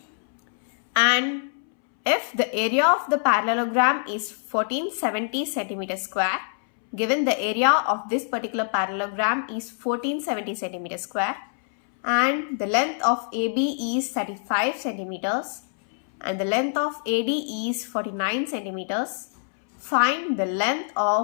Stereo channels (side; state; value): right; silent; 62 dB below the other